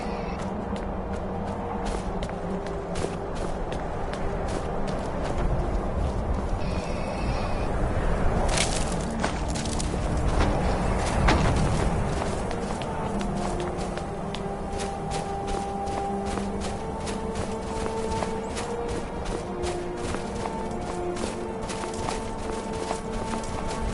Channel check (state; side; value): identical; both; correlation 1.00